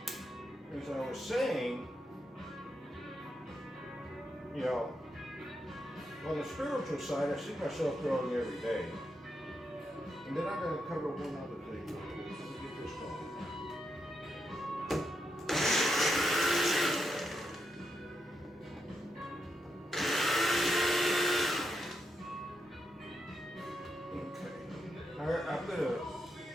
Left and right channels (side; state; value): both; normal; correlation 0.83